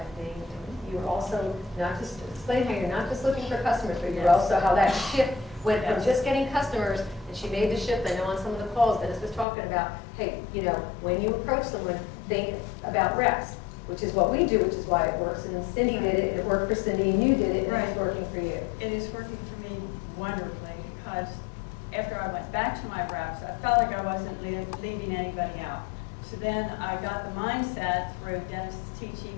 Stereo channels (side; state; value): right; drops out; at 9.5 s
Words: you're also not just, explain how you're not just looking for customers, but you're also how that shift went from just getting customers, and she made the shift. I know on some of the calls Dennis was talking about, hey, you know, when you approach someone, think about reps, which is what we do, which is why it works. And then Cindy did it, and it worked for Cindy, and you did it, and it's working for you. It is working for me wonderfully because after I went back to my reps, I felt like I wasn't leaving anybody out. So then I got the mindset through Dennis's